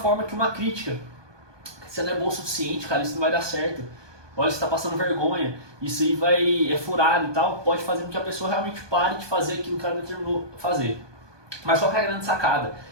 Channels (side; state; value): left; late; 1.2 ms